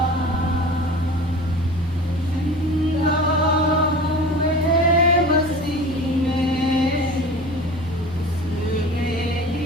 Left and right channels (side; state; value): both; normal; correlation 0.37